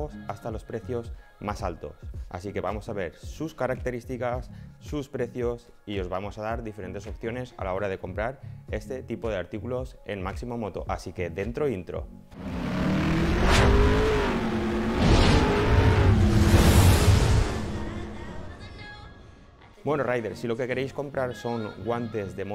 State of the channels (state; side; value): identical; both; correlation 1.00